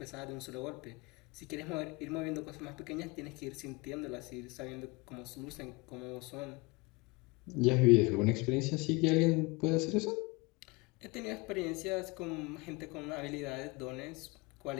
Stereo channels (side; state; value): right; quieter; 26.2 dB